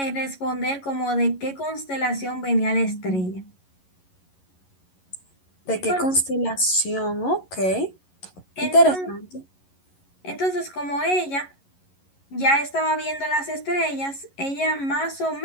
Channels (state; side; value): late; right; 11 ms